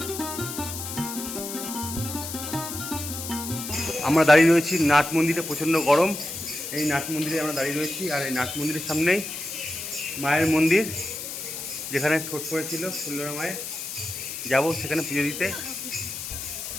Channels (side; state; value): left; noise; hiss, 7 dB below the sound